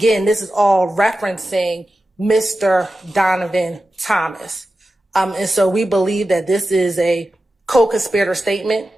this is all referencing Mr. Donovan Thomas. And so we believe that this is a co-conspirator statement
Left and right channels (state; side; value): normal; both; correlation 0.93